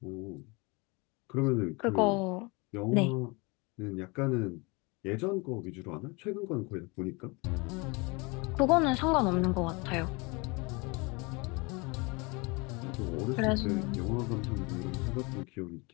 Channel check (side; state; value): right; quieter; 27.9 dB